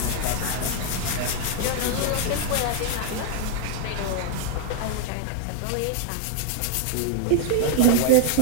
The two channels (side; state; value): both; different; correlation 0.00